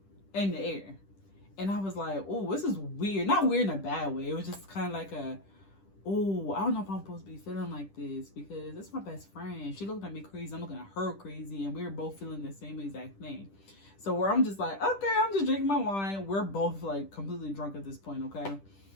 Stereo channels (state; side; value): late; right; 10 ms